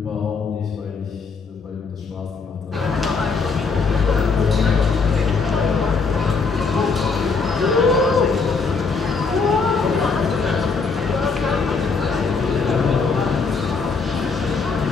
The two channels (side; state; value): right; quieter; 4.7 dB